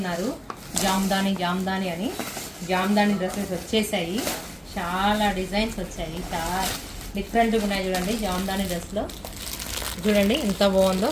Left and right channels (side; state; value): both; identical; correlation 1.00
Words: జామ్దాని అని. జామ్దాని డ్రెస్సెస్ వచ్చేసాయి. చాలా డిజైన్స్ వచ్చాయి, చాలా డిఫరెంట్గా ఉన్నాయి. చూడండి జామ్దాని డ్రెస్లో చూడండి ఎంత బాగుందో.